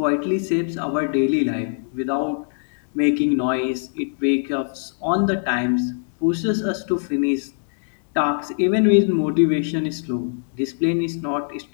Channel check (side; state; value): right; silent; digital silence